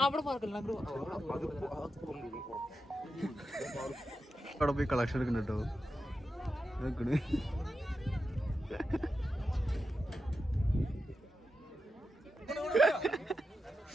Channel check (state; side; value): normal; both; correlation 0.90